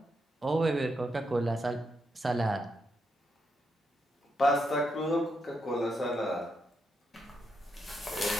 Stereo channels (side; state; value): both; normal; correlation 0.81